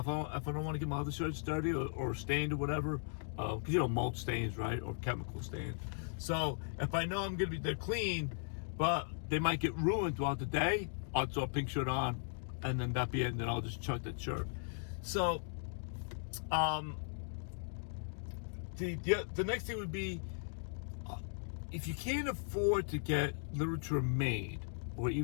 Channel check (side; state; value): right; silent; digital silence